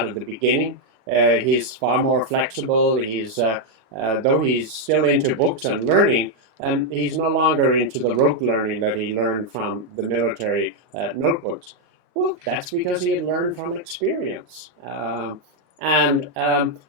of the beginning. He's far more flexible. Though he's still into books and learning, he's no longer into the rote learning that he learned from the military notebooks. Well, that's because he had learned from experience. And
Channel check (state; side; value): late; left; 39 ms